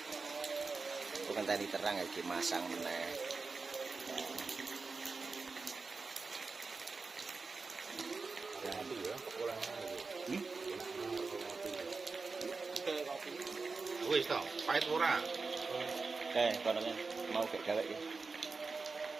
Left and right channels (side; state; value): left; quieter; 4.3 dB